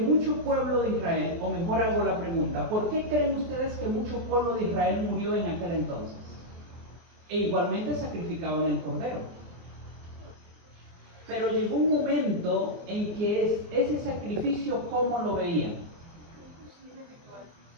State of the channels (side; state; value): left; late; 24 ms